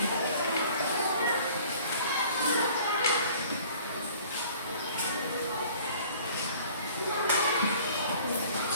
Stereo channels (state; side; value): inverted; both; correlation -0.51